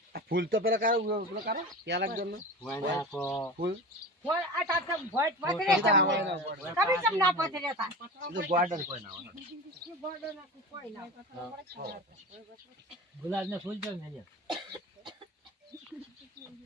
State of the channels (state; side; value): normal; both; correlation 0.31